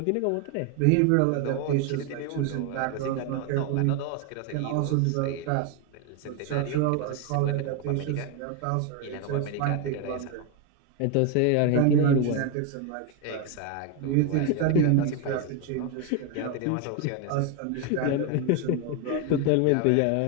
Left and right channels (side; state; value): both; different; correlation 0.01